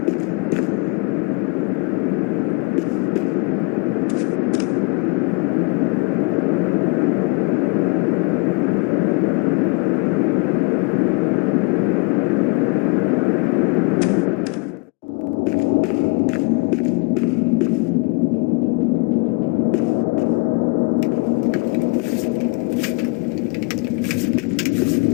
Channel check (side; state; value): right; quieter; 29.5 dB